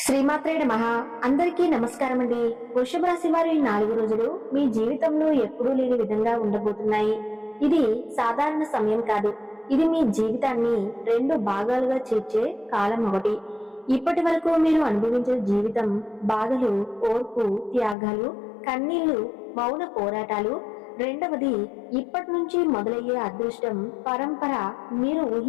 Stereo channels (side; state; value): right; drops out; at 17.9 s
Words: శ్రీమాత్రే నమః. అందరికీ నమస్కారం అండి. వృషభ రాశి వారి 4 రోజులు మీ జీవితంలో ఎప్పుడూ లేని విధంగా ఉండబోతున్నాయి. ఇది సాధారణ సమయం కాదు. ఇది మీ జీవితాన్ని 2 భాగాలుగా చేర్చే కాలం ఒకటి. ఇప్పటి వరకు మీరు అనుభవించిన జీవితం బాధలు, ఓర్పు, త్యాగాలు, కన్నీళ్లు, మౌన పోరాటాలు. రెండవది ఇప్పటి నుంచి మొదలయ్యే అదృష్టం, పరంపర, మీరు